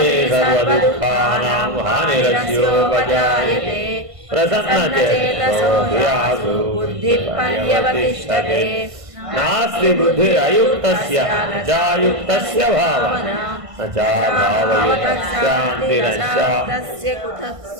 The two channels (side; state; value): left; late; 1.5 ms